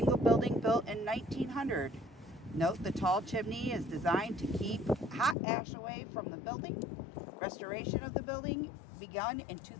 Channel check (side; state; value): right; drops out; at 5.4 s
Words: building built in 1900. Note the tall chimney is designed to keep hot ash away from the building. Restoration of the building begun in